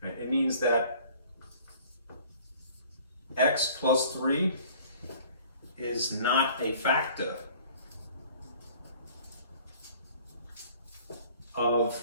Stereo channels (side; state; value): both; inverted; correlation -0.51